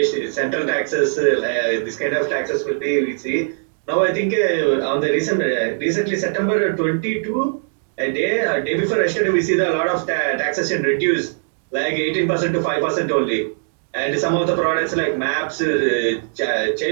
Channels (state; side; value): silent; left; digital silence